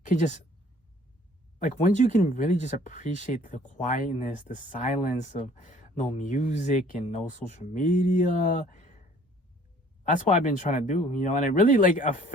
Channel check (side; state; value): both; normal; correlation 0.55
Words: can just, like, once you can really just appreciate the quietness, the silence of no music and no social media. That's what I've been trying to do, you know, and it really like